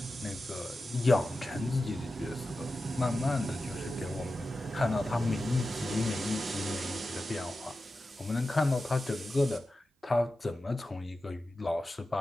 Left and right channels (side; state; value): both; normal; correlation 0.92